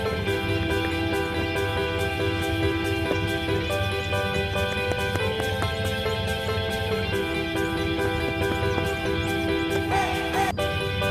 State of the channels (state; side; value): identical; both; correlation 1.00